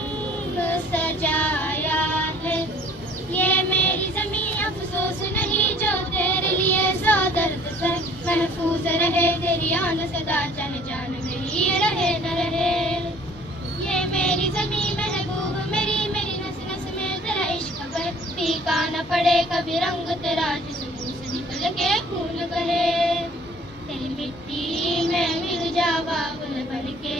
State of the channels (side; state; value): both; normal; correlation 0.53